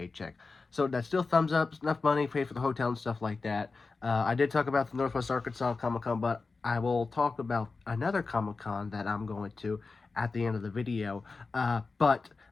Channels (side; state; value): right; quieter; 4.1 dB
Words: So that's still thumbs up. It's enough money, pay for the hotel and stuff like that. I did talk about the Northwest Arkansas Comic Con, but I will talk about another Comic Con that I'm going to at the end of the video. But